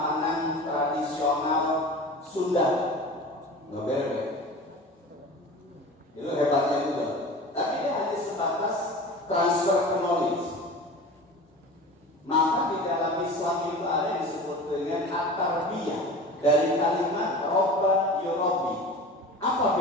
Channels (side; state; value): both; normal; correlation 0.35